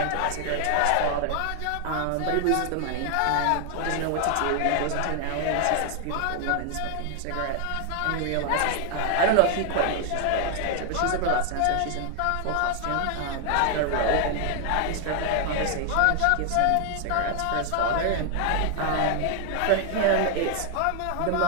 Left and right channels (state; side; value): different; both; correlation 0.00